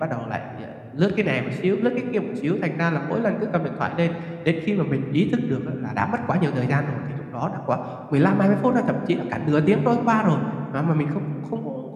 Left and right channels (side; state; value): both; identical; correlation 1.00